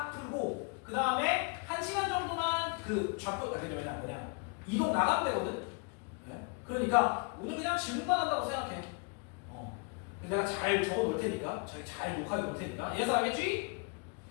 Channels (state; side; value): quieter; right; 35.0 dB